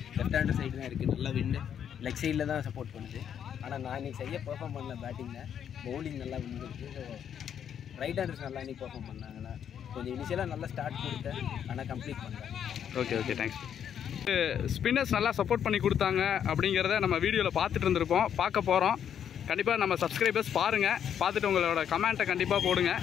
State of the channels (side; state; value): right; quieter; 8.8 dB